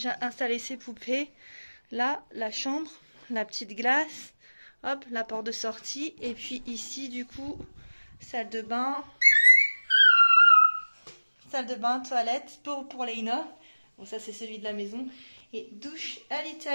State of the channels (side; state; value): both; inverted; correlation -1.00